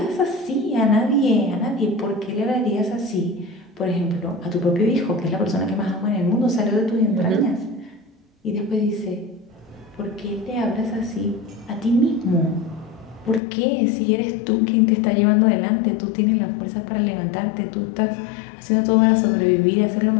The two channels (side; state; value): right; drops out; at 13.4 s